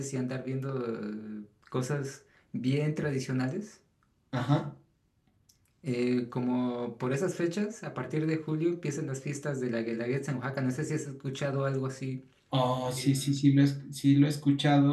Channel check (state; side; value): identical; both; correlation 1.00